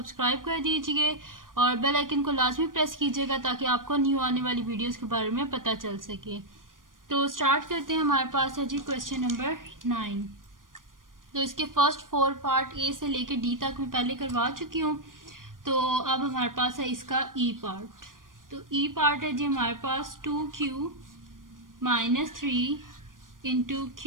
कर दीजिए और बेल आइकन को लाजमी प्रेस कीजिएगा ताकि आपको न्यू आने वाली वीडियोस के बारे में पता चल सके। तो स्टार्ट करते हैं। हमारे पास है जी क्वेश्चन नंबर 9। तो इसके फर्स्ट 4 पार्ट ए से लेकर डी तक मैं पहले करवा चुकी हूँ। तो अब हमारे पास है इसका ई पार्ट। तो ई पार्ट है जी हमारे पास 2q minus 3 into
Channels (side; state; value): left; late; 0.90 ms